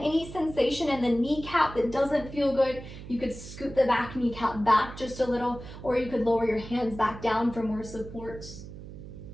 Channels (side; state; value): right; noise; hum, 13 dB below the sound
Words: sensation in the kneecap that doesn't feel good, you could scoot the back kneecap back just a little, or you could lower your hands back down for more support.